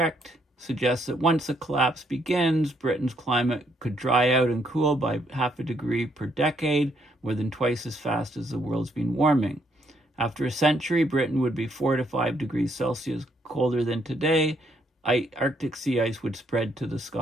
suggests that once a collapse begins, Britain's climate could dry out and cool by 0.5 degree per decade, more than twice as fast as the world's been warming. After a century, Britain would be 4 to 5 degrees Celsius colder than today, Arctic sea ice would spread to the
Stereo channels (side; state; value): both; normal; correlation 0.72